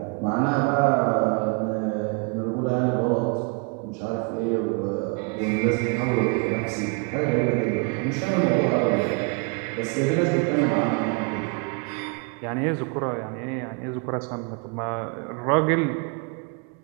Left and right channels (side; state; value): left; quieter; 33.8 dB